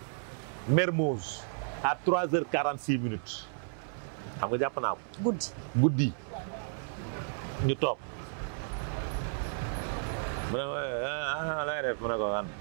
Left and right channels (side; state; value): left; silent; 56 dB below the other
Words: Mermoz à 3h46 minutes xam nga jàpp naa ko. guddi ñu toog mu ne la ngay def mu ne ko an